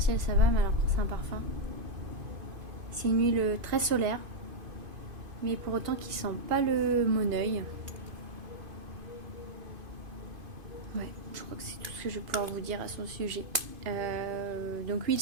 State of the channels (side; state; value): left; late; 2.5 ms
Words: ça va, mais alors quand c'est un parfum, c'est une huile très solaire. Mais pour autant qui sent pas le moneuil. Ouais, je crois que c'est tout ce que je vais pouvoir vous dire à son sujet. Donc huile